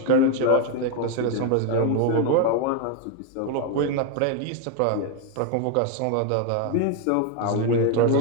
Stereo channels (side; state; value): both; different; correlation 0.01